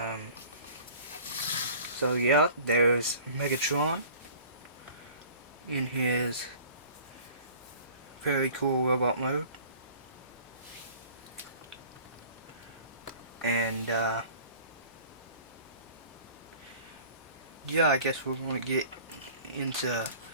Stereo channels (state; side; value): inverted; both; correlation -0.47